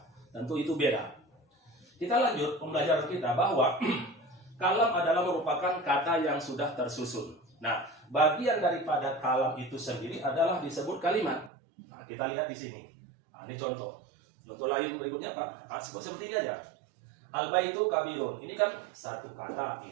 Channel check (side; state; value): left; drops out; at 11.5 s